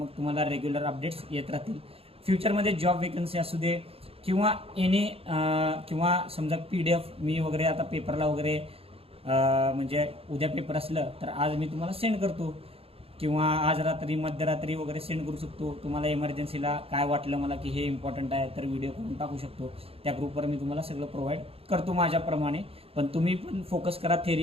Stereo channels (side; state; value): left; late; 0.28 ms